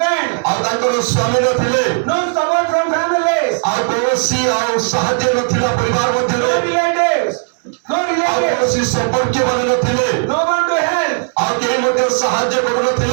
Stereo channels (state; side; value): silent; left; digital silence